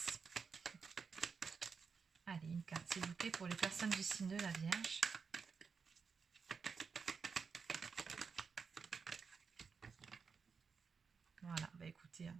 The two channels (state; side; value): quieter; left; 5.5 dB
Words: Allez, une carte, s'il vous plaît, pour les personnes du signe de la Vierge. Voilà, bah écoutez,